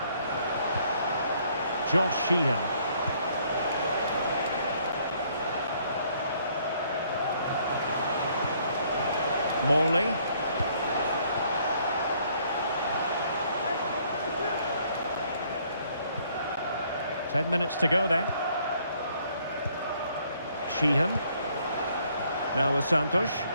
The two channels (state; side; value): inverted; both; correlation -0.65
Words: Josh Sheehan. Morley. Ten minutes to go then. Sheehan. Now with Santos.